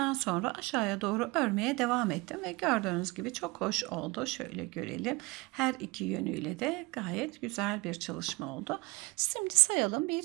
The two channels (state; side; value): quieter; left; 25.2 dB